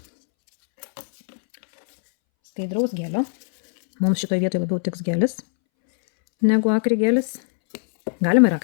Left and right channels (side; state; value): right; silent; 65 dB below the other